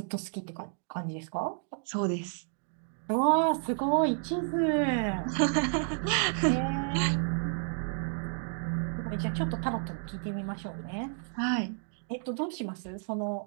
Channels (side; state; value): left; silent; 57 dB below the other